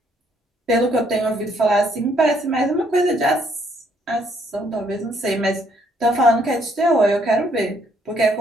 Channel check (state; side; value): normal; both; correlation 0.68